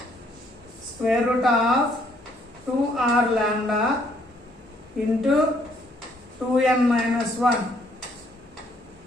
square root of 2r lambda into 2n minus 1.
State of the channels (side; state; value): both; normal; correlation 0.67